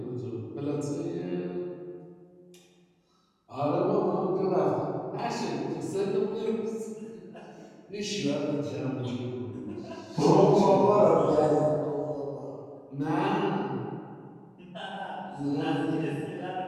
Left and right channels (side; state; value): both; identical; correlation 1.00